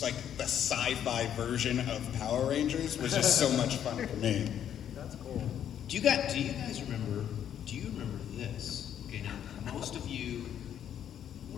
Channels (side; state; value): right; quieter; 9.7 dB